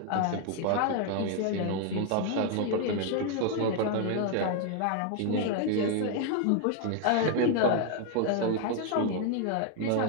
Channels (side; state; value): both; different; correlation 0.01